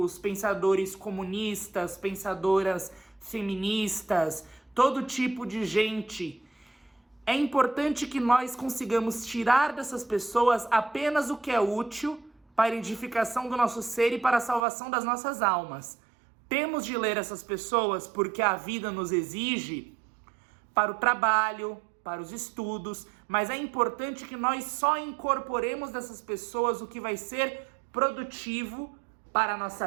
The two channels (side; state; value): left; drops out; at 14.7 s